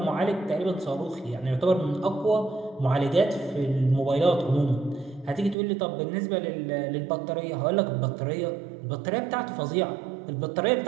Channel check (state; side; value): drops out; left; at 5.6 s